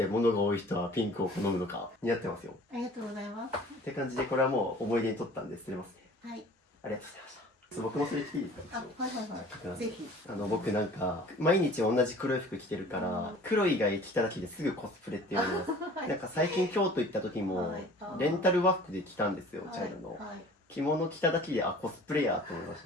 物が多い人はピンクを好むのか、似合ってますよ。ありがとうございます。って感じで、これはもう思い出に取ったんで捨てますね。はい。ありがとうございました。僕もそれ着ていいですか？はいはいはい。ぜひ。僕なんか、毎日同じ黒い服着てるから、黒以外着ただけですぐコスプレって言われます。なんか最近京都行った時も、レンタル和服で着たんですよ、茶色の。着物着ただけで、コスプレやと思いまし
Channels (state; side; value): normal; both; correlation 0.47